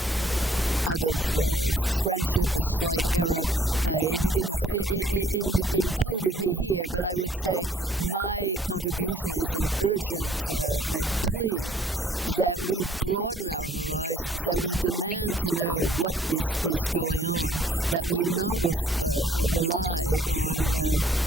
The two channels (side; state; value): both; normal; correlation 0.59